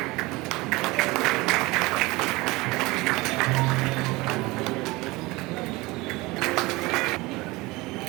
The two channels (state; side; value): quieter; left; 22.2 dB